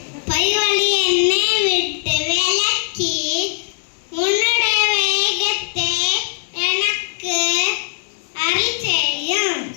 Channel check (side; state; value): right; silent; digital silence